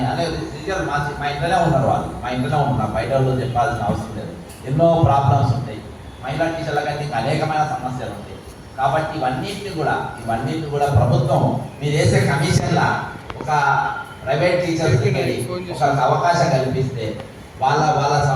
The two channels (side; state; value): both; identical; correlation 1.00